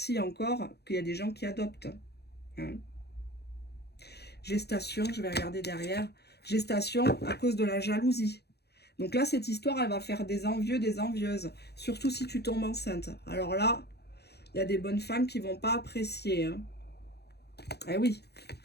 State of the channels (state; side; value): late; right; 0.48 ms